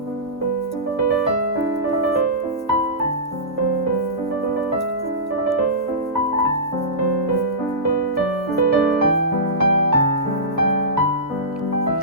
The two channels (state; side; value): normal; both; correlation -0.18